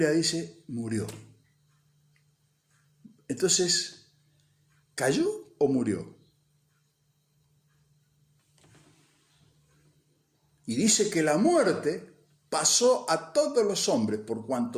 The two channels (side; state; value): both; identical; correlation 1.00